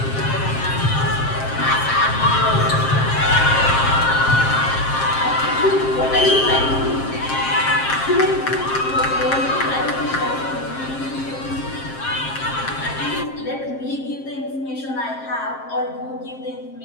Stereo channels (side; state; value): right; late; 7.5 ms